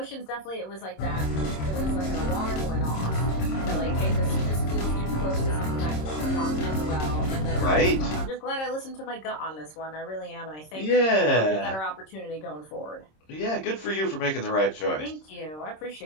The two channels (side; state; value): right; late; 26 ms